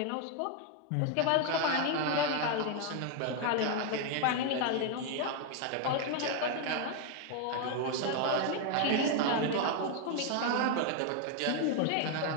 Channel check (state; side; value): different; both; correlation 0.01